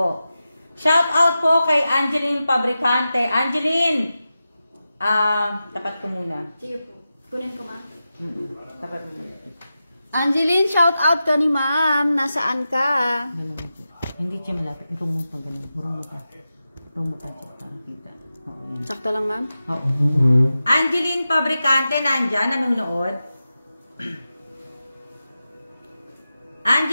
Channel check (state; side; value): inverted; both; correlation -0.92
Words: Shout out po kay Angeline Fabricante. Angeline! Tapat ko muna. Sige po. Kunin ko, ma'am. Tapat mo muna. Angeline, shout out ka ni ma'am. Nasaan ka? Hindi siya malapit. Itong mo pa ganun. Murang mo pa. Itong mo pa siya para kita. Oo, yan. Sakto lang, ma'am? Oo. Angeline Fabricante, nandyan, nanonood.